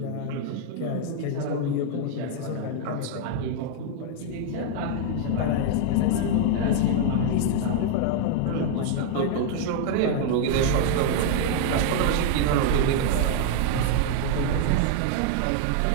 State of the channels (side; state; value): both; different; correlation 0.00